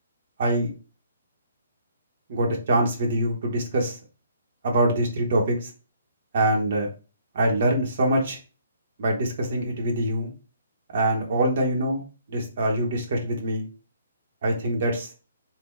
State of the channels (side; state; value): both; inverted; correlation -0.64